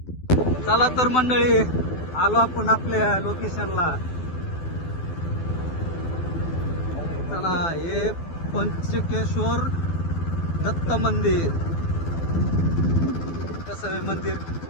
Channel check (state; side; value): late; right; 12 ms